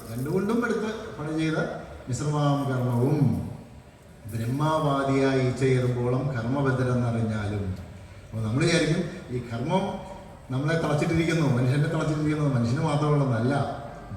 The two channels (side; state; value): both; identical; correlation 1.00